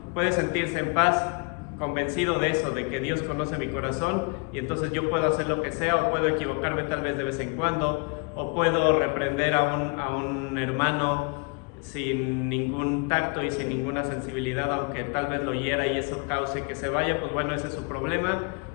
puede sentirse en paz, convencido de eso, de que Dios conoce mi corazón, y entonces yo puedo hacer lo que sea, o puedo equivocarme tal vez de vez en cuando, o puedo reprender a un hermano sin ningún tacto y sin ninguna sensibilidad, aunque tal vez lo hiera y eso cause que se vaya. Pues bueno, ese es su problema.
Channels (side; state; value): right; quieter; 34.3 dB